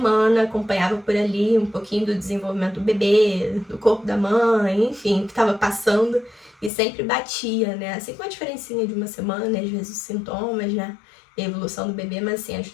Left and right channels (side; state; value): right; drops out; at 6.7 s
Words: acompanhava por ali um pouquinho do desenvolvimento do bebê, do corpo da mãe, enfim, o que estava passando. E sempre batia, né? Assim, com uma diferencinha de uma semana, às vezes os sintomas, né? E a evolução do bebê, mas assim,